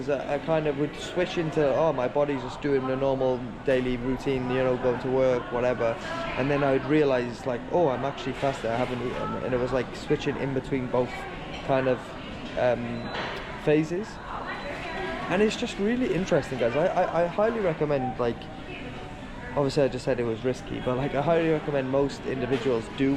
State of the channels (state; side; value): identical; both; correlation 1.00